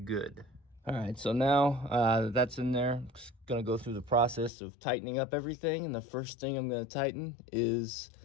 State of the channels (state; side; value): drops out; right; at 4.5 s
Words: All right, so now that's in there. I'm just gonna go through the process of tightening up everything, and the first thing I'm gonna tighten is